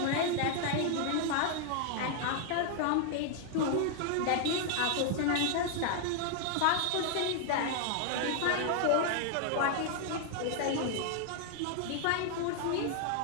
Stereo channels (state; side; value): different; both; correlation 0.00